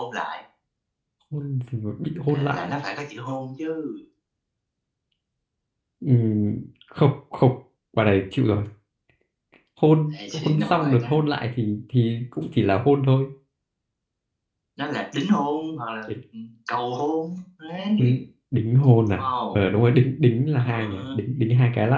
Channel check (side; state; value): both; identical; correlation 1.00